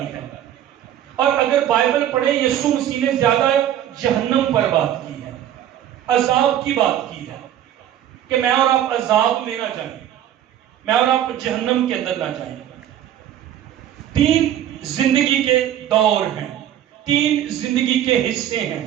ہے۔ اور اگر بائبل پڑھیں، یسوع مسیح نے زیادہ جہنم پر بات کی ہے، عذاب کی بات کی ہے، کہ میں اور آپ عذاب میں نہ جائیں، میں اور آپ جہنم کے اندر نہ جائیں۔ 3 زندگی کے دور ہیں، 3 زندگی کے حصے ہیں،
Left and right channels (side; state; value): left; quieter; 11.1 dB